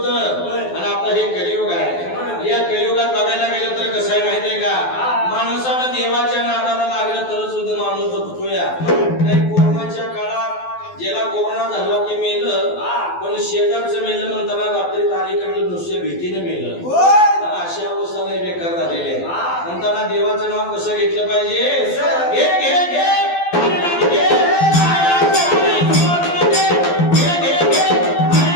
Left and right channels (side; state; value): right; late; 12 ms